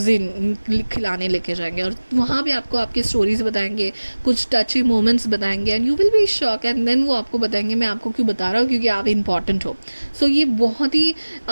खिलाने लेके जाएंगे और वहाँ पे आपको आपकी स्टोरीज बताएंगे, कुछ टची मोमेंट्स बताएंगे and you will be shock. And then वो आपको बताएंगे मैं आपको क्यों बता रहा हूँ, क्योंकि आप इम्पॉर्टेंट हो. सो ये बहुत ही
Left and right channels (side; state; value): both; inverted; correlation -1.00